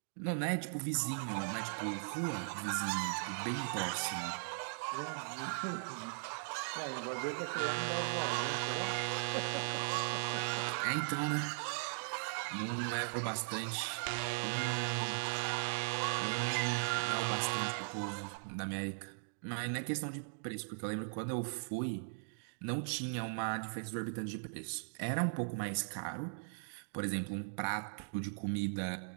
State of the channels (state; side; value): silent; left; digital silence